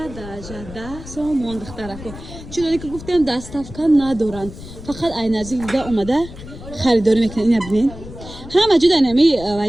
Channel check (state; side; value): noise; left; rumble, 14 dB below the sound